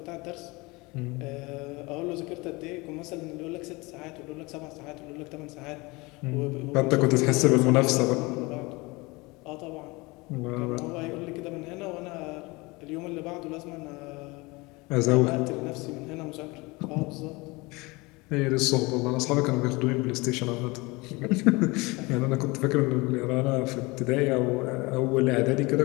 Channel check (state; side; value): quieter; right; 24.4 dB